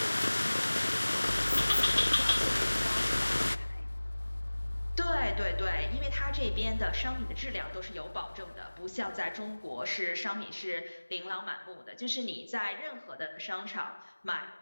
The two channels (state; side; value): inverted; both; correlation -1.00